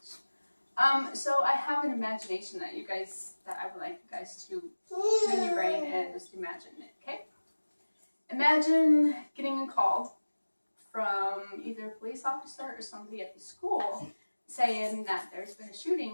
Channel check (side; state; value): both; inverted; correlation -1.00